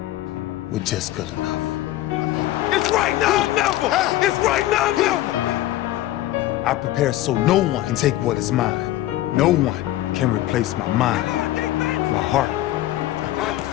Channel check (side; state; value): right; quieter; 15.0 dB